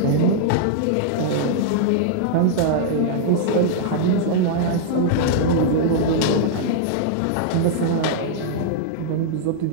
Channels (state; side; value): different; both; correlation -0.01